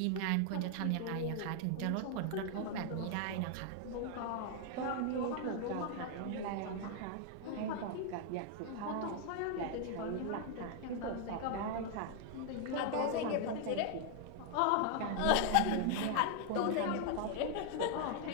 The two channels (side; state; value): both; different; correlation 0.00